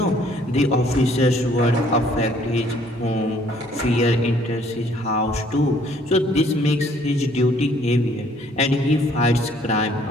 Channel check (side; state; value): both; normal; correlation 0.61